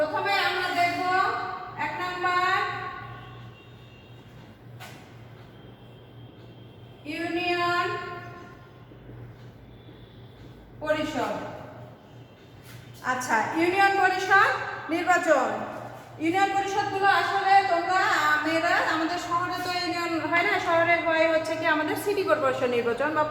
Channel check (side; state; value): both; identical; correlation 1.00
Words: আমরা দেখব 1 নাম্বার ইউনিয়ন পরিষদ। আচ্ছা, ইউনিয়ন পরিষদ নির্বাচন। ইউনিয়ন পরিষদগুলো আসলে তোমরা মেয়েরা, আমাদের শহরে তো ইউনিয়ন হয় না, শহরে হয় হচ্ছে কি আমাদের সিটি কর্পোরেশন নির্বাচন বা